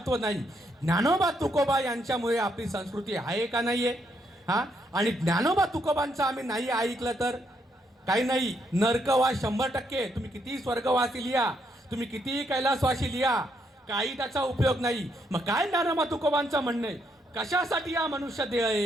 नाही. ज्ञानोबा तुकोबा यांच्यामुळे आपली संस्कृती आहे का नाहीये? आणि ज्ञानोबा तुकोबांचं आम्ही नाही ऐकलं तर काही नाही. नरकवास 100%. तुम्ही किती स्वर्गवासी लिहा, तुम्ही किती कैलासवासी लिहा, काही त्याचा उपयोग नाही. मग काय ज्ञानोबा तुकोबांचं म्हणणं आहे? कशासाठी हा मनुष्य देह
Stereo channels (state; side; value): normal; both; correlation 0.75